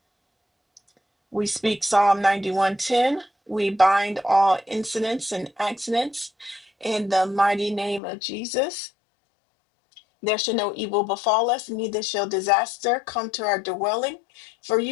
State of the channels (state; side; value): drops out; right; at 8.0 s